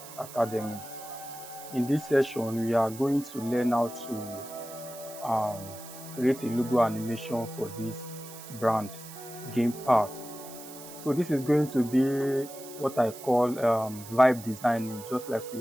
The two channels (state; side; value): noise; right; hiss, 15 dB below the sound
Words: Academy. In this session, we are going to learn how to create a logo animation for this brand, Game Park. So this is going to be what I call vibe designing, just like we